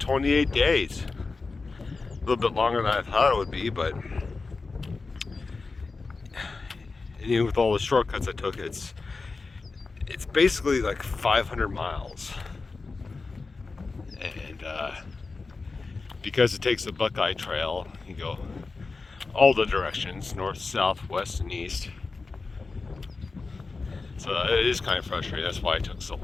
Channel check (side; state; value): right; quieter; 4.0 dB